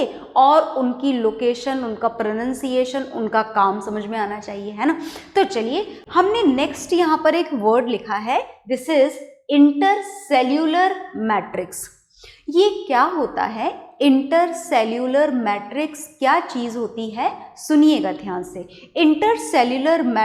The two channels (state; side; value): identical; both; correlation 1.00